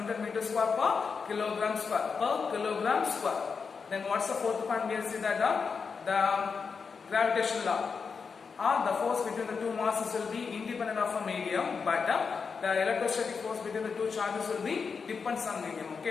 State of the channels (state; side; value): quieter; right; 5.5 dB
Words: Newton meter square per kilogram square. Then what's the fourth point? We see that the gravitational law. The force between the two masses will be independent of a medium, but the electrostatic force between the two charges will be depends on medium.